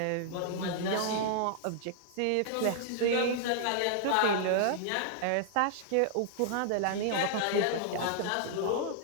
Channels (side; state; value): both; different; correlation -0.01